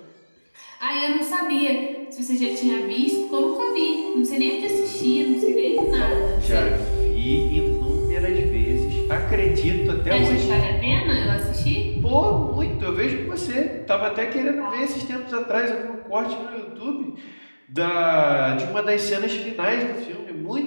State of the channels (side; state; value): both; inverted; correlation -1.00